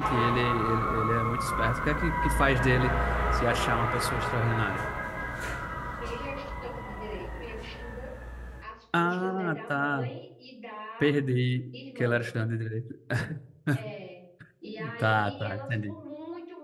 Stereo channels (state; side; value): identical; both; correlation 1.00